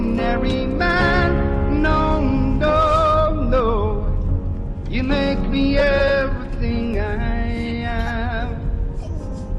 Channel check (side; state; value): both; identical; correlation 1.00